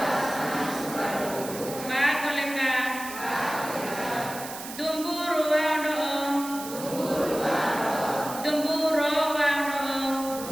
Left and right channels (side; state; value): right; noise; hiss, 11 dB below the sound